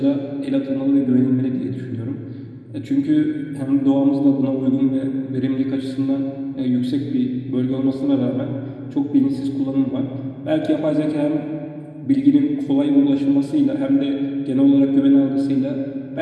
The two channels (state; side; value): identical; both; correlation 1.00